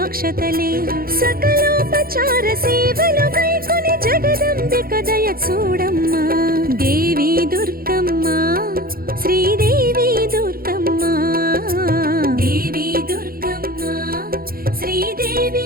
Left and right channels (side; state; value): left; late; 0.43 ms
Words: సకలోపచార సేవలు గైకొని జగదంబిక దయ చూడమ్మా దేవి దుర్గమ్మ శ్రీదేవి దుర్గమ్మ దేవి దుర్గమ్మ శ్రీదేవి